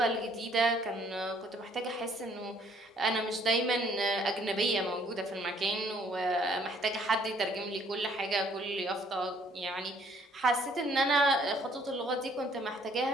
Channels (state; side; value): normal; both; correlation 0.63